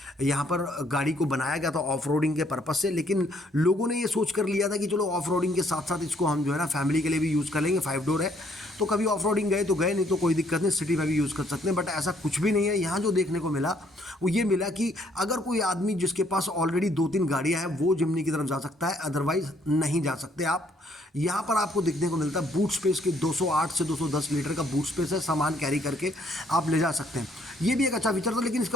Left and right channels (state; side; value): normal; both; correlation 0.67